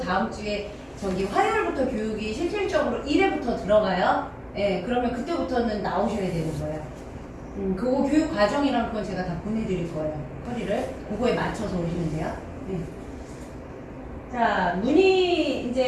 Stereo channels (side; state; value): both; identical; correlation 1.00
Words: 주에 저기 화요일부터 교육이 실질적으로 1회부터 들어가요. 네. 그러면 그때부터는 나오셔야 되는 거예요. 그거 교육 과정이랑 그건 제가 다 보내드릴 거예요. 허리를 그거에 맞춰서 오시면 돼요. 네. 자, 문의